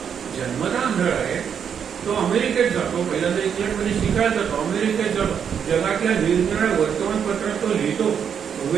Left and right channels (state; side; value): quieter; left; 7.7 dB